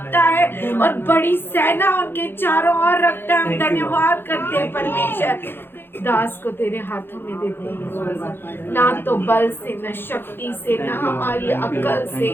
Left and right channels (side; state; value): right; late; 0.10 ms